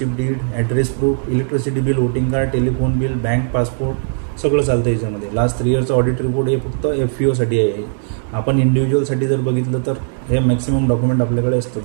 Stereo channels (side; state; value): left; silent; 63 dB below the other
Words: deed, address proof, electricity bill, voting card, telephone bill, bank passport सगळं चालतं याच्यामध्ये. लास्ट 3 इयरचं ऑडिट रिपोर्ट हे फक्त FPOसाठी आहे. आपण इंडिव्हिज्युअलसाठी जर बघितलं तर हे मॅक्सिमम डॉक्युमेंट आपल्याकडे असतात.